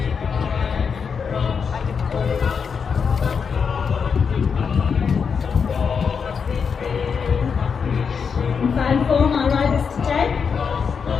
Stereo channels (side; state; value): right; quieter; 6.2 dB